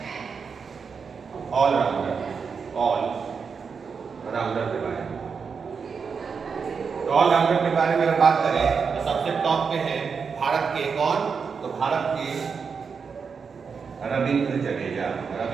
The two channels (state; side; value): quieter; left; 5.7 dB